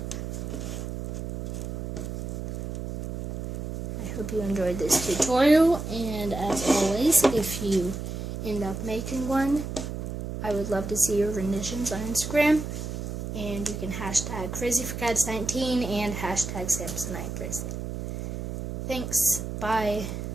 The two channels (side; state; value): right; noise; hum, 5 dB below the sound